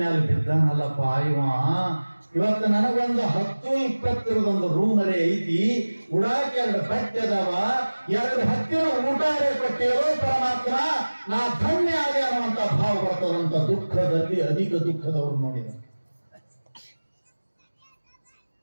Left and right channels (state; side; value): inverted; both; correlation -1.00